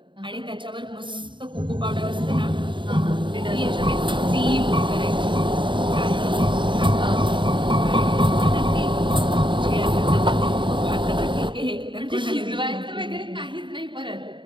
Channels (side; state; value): left; late; 0.23 ms